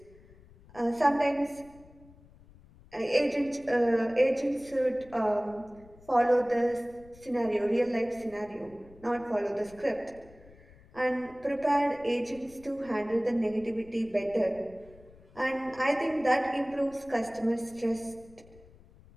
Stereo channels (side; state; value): left; noise; rumble, 24 dB below the sound